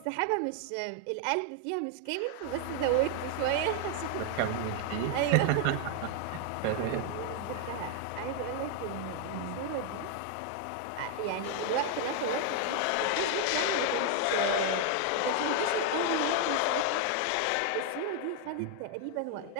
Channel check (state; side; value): different; both; correlation 0.00